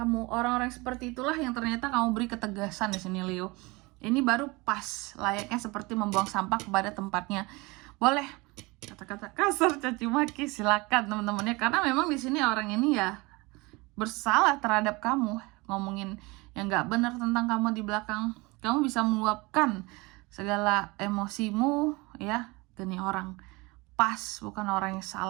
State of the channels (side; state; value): left; quieter; 24.5 dB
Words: Orang-orang seperti itulah yang ternyata kamu beri ketegasan di sini Leo. Ini baru pas, layaknya seperti membuang sampah kepada tempatnya. Boleh kata-kata kasar, caci maki, silakan teman-temannya, karena memang di sini orang ini ya bersalah terhadap kamu, ngomongin yang nggak benar tentang kamu di belakang. Kamu bisa meluapkan segala emosimu ya ke nih orang, pas, bukan orang yang